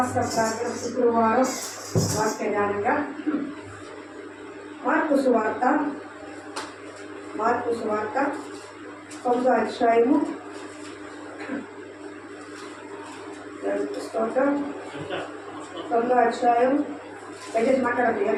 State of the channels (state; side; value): identical; both; correlation 1.00